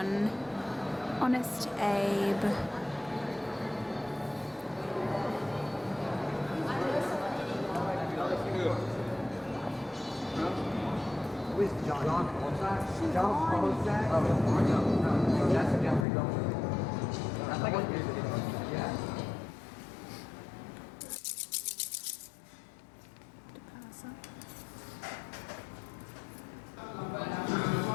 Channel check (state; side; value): drops out; right; at 16.1 s